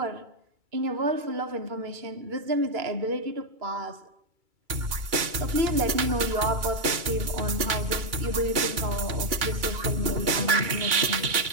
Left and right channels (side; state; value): left; late; 2.3 ms